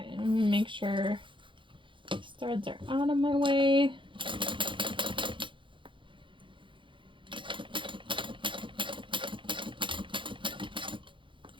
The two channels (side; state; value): left; late; 0.24 ms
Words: I'm going to make sure I start threads are out of my way.